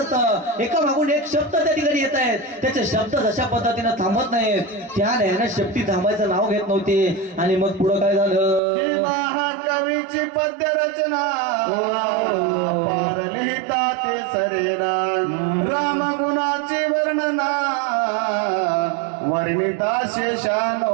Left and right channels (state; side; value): drops out; left; at 8.6 s